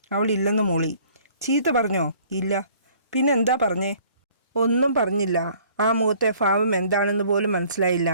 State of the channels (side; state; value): both; inverted; correlation -0.56